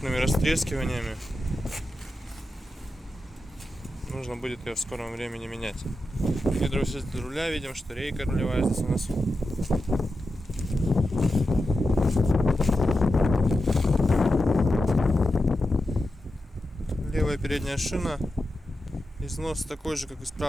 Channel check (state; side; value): normal; both; correlation 0.90